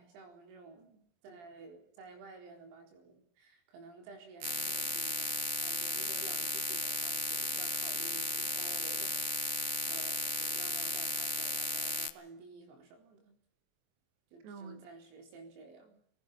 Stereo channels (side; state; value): left; late; 23 ms